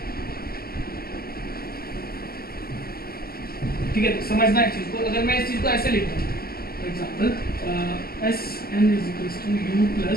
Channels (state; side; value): late; right; 0.44 ms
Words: ठीक है, समझना है चीज़ को। अगर मैं इस चीज़ को ऐसे लिखता हूँ, for example S N is equals to U